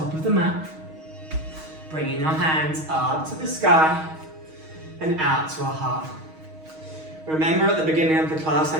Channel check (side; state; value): left; late; 6.3 ms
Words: of the mat. Bringing our hands up to the sky and out to our heart. Remember at the beginning of the class, I